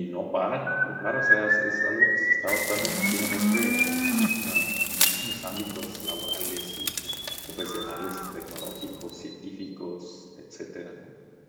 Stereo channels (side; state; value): both; identical; correlation 1.00